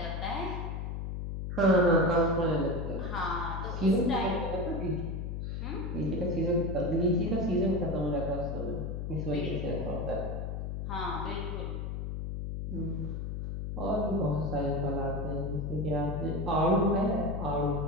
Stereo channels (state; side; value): noise; left; hum, 4 dB below the sound